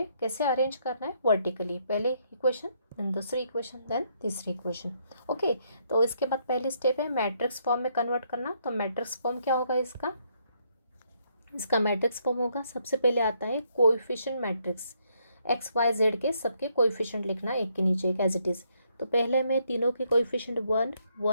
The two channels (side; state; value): both; inverted; correlation -0.73